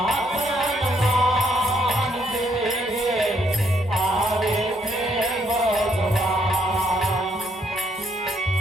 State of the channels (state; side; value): normal; both; correlation 0.71